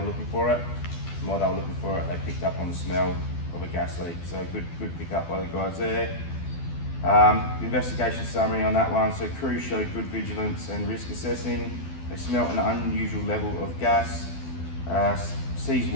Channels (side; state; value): right; late; 12 ms